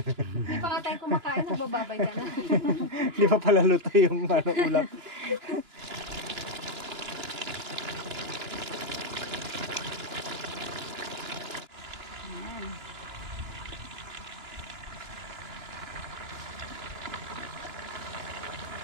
Hindi pa nga tayo kumakain, nagbababay ka na. Hindi pa pala luto yung ulam.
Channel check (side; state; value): left; late; 2.9 ms